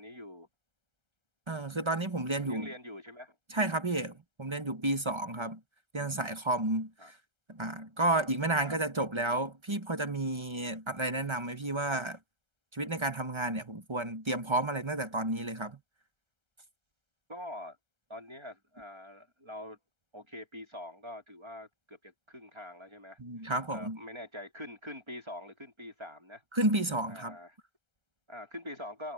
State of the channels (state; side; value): late; left; 1.3 ms